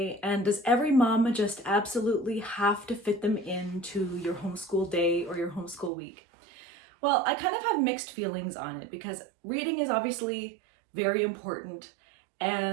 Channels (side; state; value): left; drops out; at 5.9 s